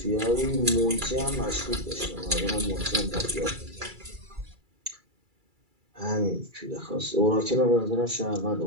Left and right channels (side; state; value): left; late; 2.3 ms